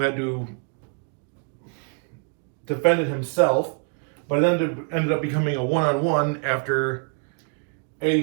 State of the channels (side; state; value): left; quieter; 39.4 dB